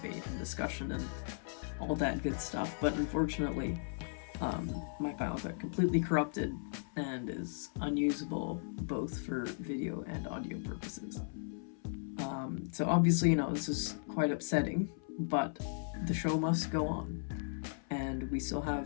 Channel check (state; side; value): silent; right; 53 dB below the other